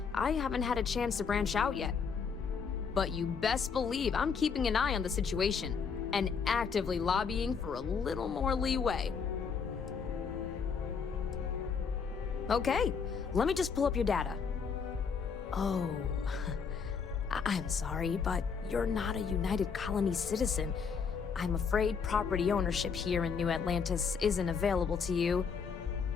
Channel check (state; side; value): quieter; right; 6.0 dB